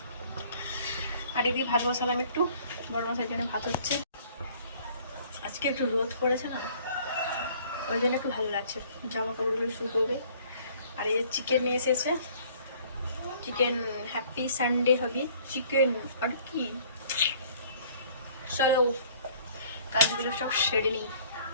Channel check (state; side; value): inverted; both; correlation -0.55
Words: আর এদিকে ভাত বসালাম, একটু বড় মশাইয়ের জন্য ভাত হচ্ছে। আজকে একটু রোদ পড়েছে না, ওই জন্য একটু ভালো লাগছে, জামা কাপড়গুলো শুকোবে। আর এই যে চিকেন নিয়ে এসেছে, চিকেন, হ্যাপি সানডে হবে চিকেন। আর কি, চলো কাজগুলো সব সেরে নিই,